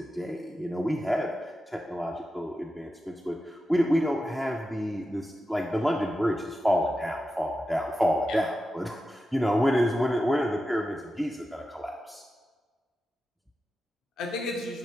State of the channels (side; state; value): both; normal; correlation 0.91